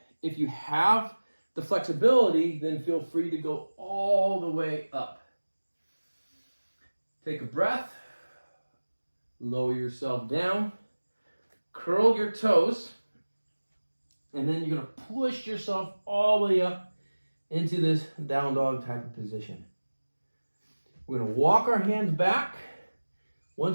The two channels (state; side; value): inverted; both; correlation -1.00